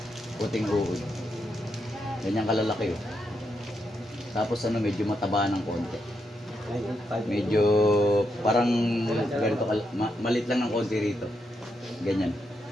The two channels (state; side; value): normal; both; correlation 0.82